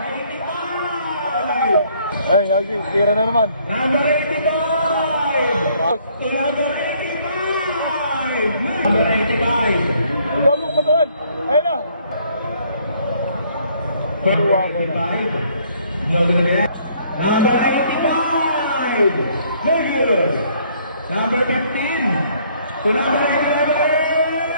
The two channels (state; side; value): inverted; both; correlation -0.64